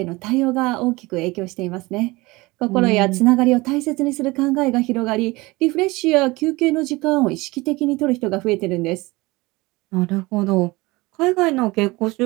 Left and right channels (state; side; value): quieter; left; 22.3 dB